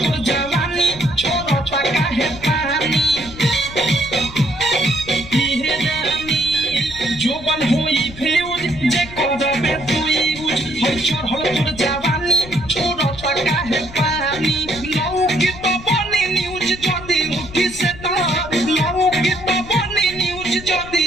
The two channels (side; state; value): left; noise; rumble, 15 dB below the sound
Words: তোর জাওয়ানি ছোট টাকা হে পানি ইহে জানি জোবান হই ফিউজ যে করবে তুই ইউজ হয় চোর হল তোর জাওয়ানি ছোট টাকা হে পানি লৌকিত বনি নিউজ যদি উঠি সে তার লৌকিত বনি নিউজ যদি